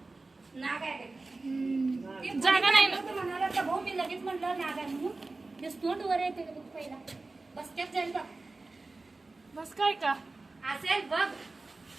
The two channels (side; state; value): left; quieter; 3.4 dB